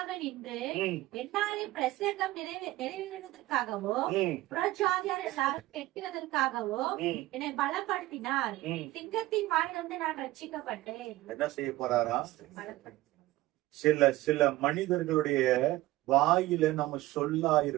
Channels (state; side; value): quieter; left; 17.5 dB